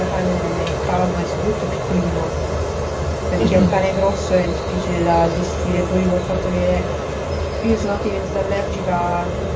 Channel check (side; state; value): both; identical; correlation 1.00